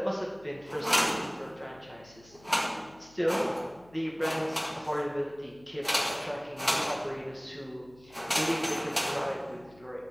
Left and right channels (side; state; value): left; noise; hum, 25 dB below the sound